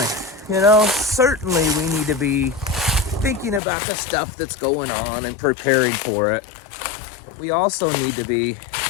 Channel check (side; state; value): right; drops out; at 3.6 s